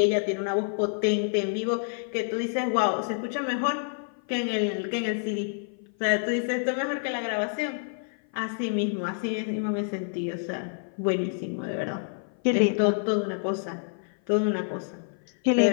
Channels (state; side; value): silent; right; 56 dB below the other